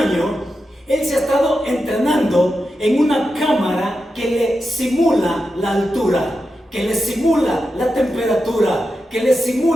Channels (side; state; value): both; normal; correlation 0.89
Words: él se ha estado entrenando en una cámara que le simula la altura, que le simula la temperatura, que le